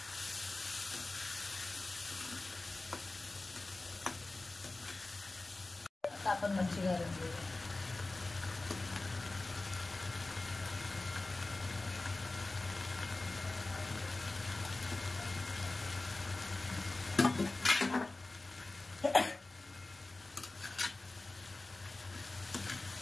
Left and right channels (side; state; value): right; quieter; 3.1 dB